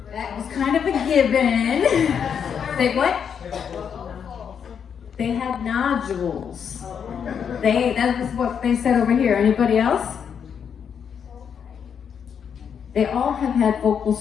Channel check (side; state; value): right; quieter; 7.5 dB